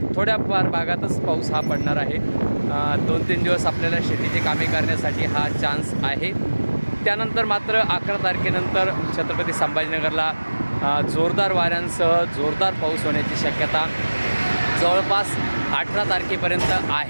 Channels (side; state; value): both; inverted; correlation -1.00